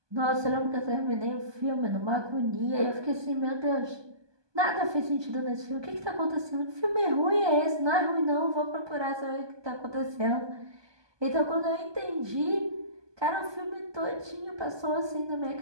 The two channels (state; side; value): late; left; 1.2 ms